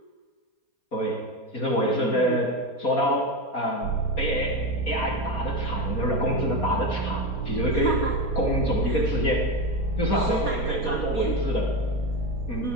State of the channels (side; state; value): right; late; 4.2 ms